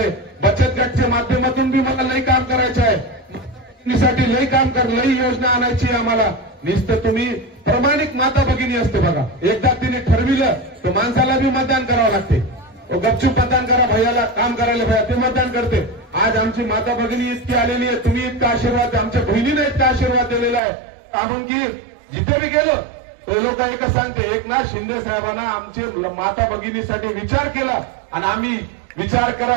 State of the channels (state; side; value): drops out; left; at 20.6 s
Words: बचत गटच्या माध्यमातून बी मला लई काम करायचं आहे. साठी लई काम लई योजना आणायची आम्हाला. नुसतं तुम्ही प्रामाणिक माता भगिनी असते बघा. एकदा तिने ठरविलं तर माणसाला बी मतदान करावं लागते. गपचूप मतदान करा, भैयाला काम करायला भैया ते मतदान करते. आज आमची माता भगिनी इतकी आलेली आहे. तुम्ही इतका आशीर्वाद, आमच्या बहिणीने इतका आशीर्वाद दिलेला आहे. आपण की जिथे बी गेलो ते लोक एकच सांगते, एकनाथ शिंदे साहेबांना आमचे माता भगिनीसाठी विचार केला आणि आम्ही विचार करा